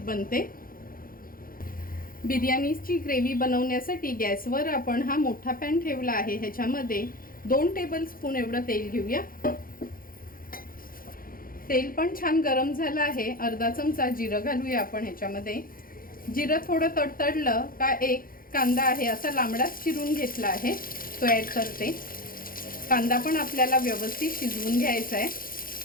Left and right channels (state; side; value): late; right; 0.42 ms